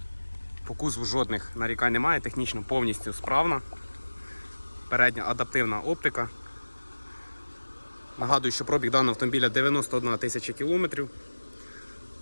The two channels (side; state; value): both; inverted; correlation -1.00